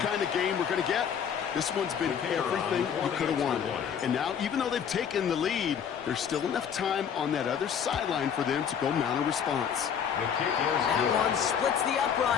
kind of game we're going to get. This one's been everything we could have wanted. And now, even though they've taken the lead, there's still enough time on that other sideline for them to go mount a response. That one splits the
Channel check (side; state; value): right; quieter; 7.8 dB